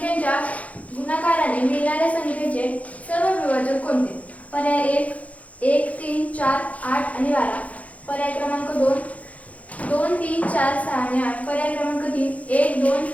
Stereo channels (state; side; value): late; right; 0.068 ms